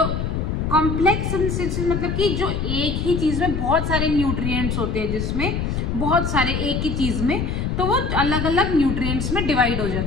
कॉम्प्लेक्स सब्सटेंसेस मतलब कि जो एक ही चीज में बहुत सारे न्यूट्रिएंट्स होते हैं, जिसमें बहुत सारे एक ही चीज में, तो वो अलग अलग न्यूट्रिएंट्स में डिवाइड हो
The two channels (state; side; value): noise; left; rumble, 1 dB below the sound